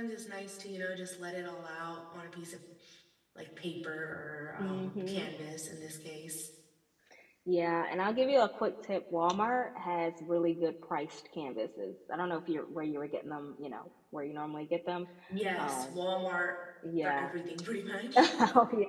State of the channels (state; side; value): identical; both; correlation 1.00